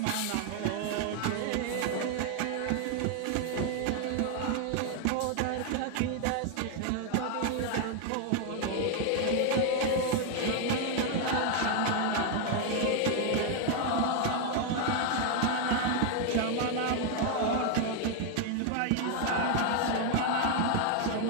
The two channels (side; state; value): both; different; correlation 0.00